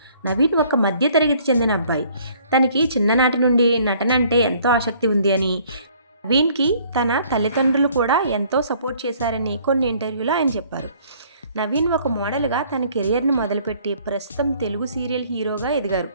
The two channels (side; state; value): both; inverted; correlation -0.59